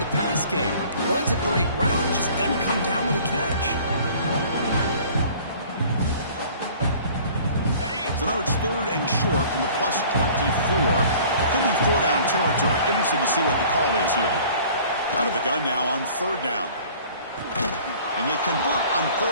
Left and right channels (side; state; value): both; inverted; correlation -0.49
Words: the pass game. Runs a great route, just doesn't come down with a catch. So now it's third and short from the plus 24. Could be four down territory. Interesting to see what the call is here. Out of the gun now on third down. And they convert on